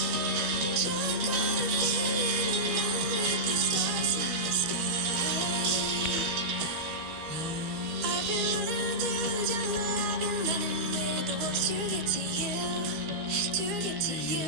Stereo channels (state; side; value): late; left; 12 ms